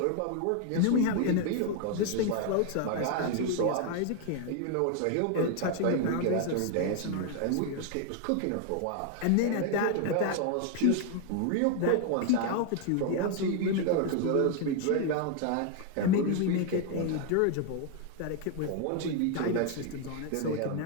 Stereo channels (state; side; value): different; both; correlation 0.00